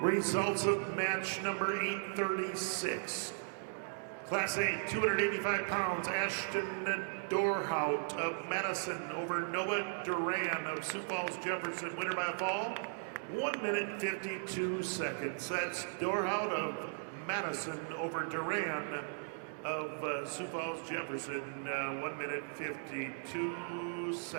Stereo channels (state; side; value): silent; left; digital silence